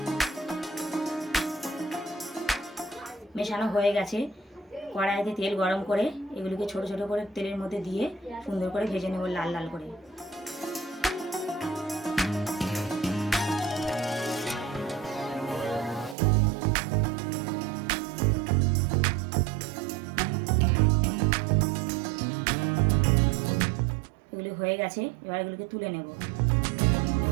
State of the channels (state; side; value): drops out; left; at 16.2 s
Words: মেশানো হয়ে গেছে। কড়াইতে তেল গরম করে এগুলিকে ছোট ছোট করে তেলের মধ্যে দিয়ে সুন্দর করে ভেজে নেব লাল লাল করে। এগুলি হয়ে গেছে, এবার এগুলিকে তুলে নেব।